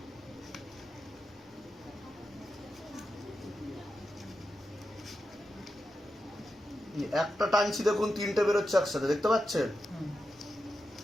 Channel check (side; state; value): both; normal; correlation 0.89